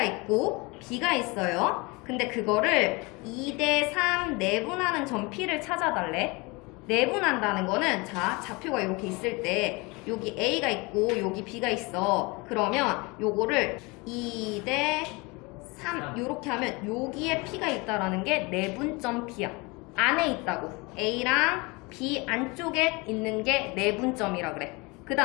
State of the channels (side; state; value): right; quieter; 26.4 dB